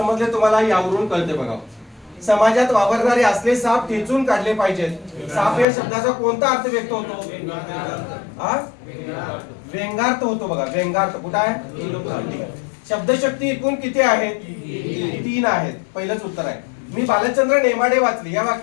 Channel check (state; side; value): drops out; right; at 5.7 s